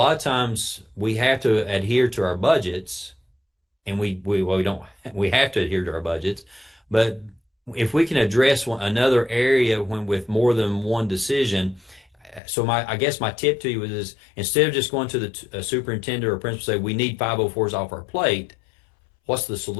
of times we have to adhere to our budgets, and we have to adhere to our budgets. But if we can address another area with more than one decision, so I guess my tip to you is instead of just going to the superintendent or principal say we need 504s off our plate, what's the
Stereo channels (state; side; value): drops out; right; at 12.4 s